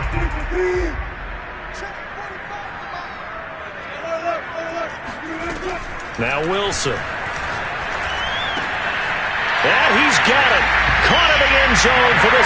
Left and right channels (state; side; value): identical; both; correlation 1.00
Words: Now Wilson. And he's got it. Caught in the end zone for the